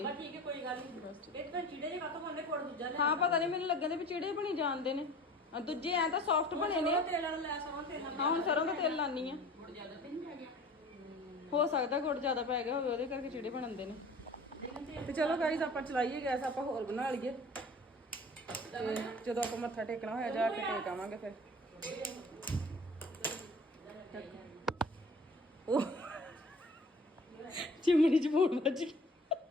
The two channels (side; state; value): both; normal; correlation 0.44